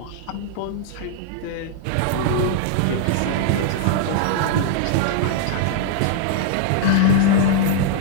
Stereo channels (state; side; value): different; both; correlation -0.01